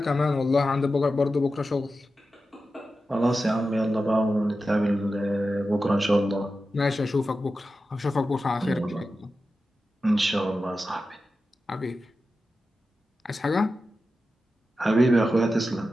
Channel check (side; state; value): both; normal; correlation 0.92